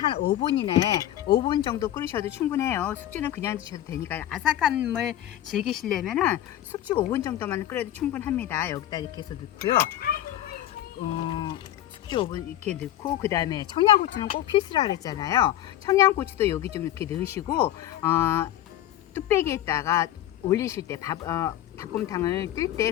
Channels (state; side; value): quieter; right; 12.9 dB